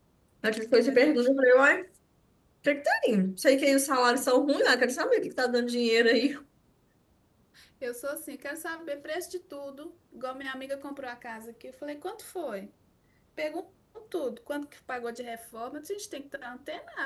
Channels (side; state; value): both; identical; correlation 1.00